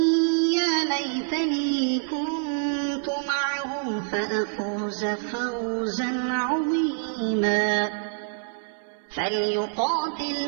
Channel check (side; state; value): left; silent; 59 dB below the other